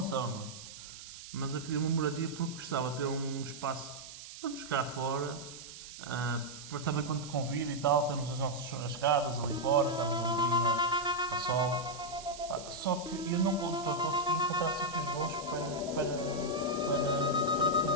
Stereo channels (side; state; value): right; noise; hiss, 13 dB below the sound